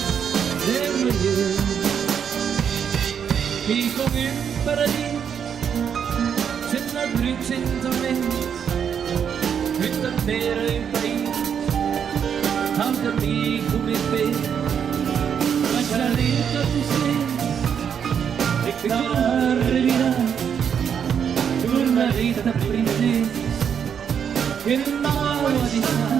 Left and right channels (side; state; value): left; quieter; 7.8 dB